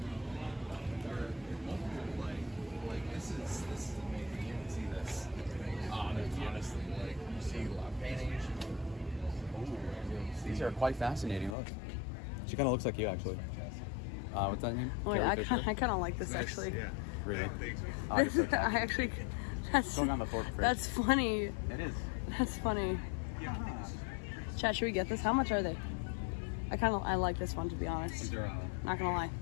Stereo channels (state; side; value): drops out; right; at 11.6 s